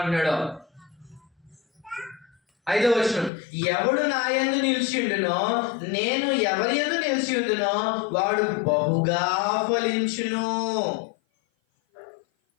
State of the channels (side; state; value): right; drops out; at 3.3 s